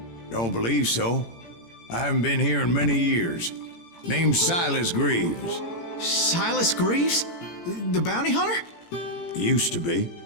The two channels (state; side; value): late; right; 18 ms